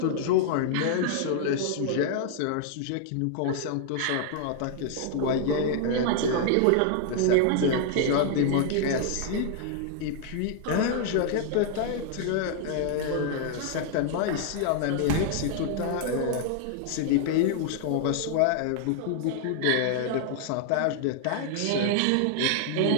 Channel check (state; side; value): different; both; correlation -0.01